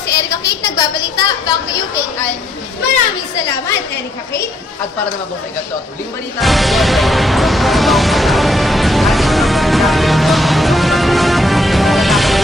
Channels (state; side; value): normal; both; correlation 0.72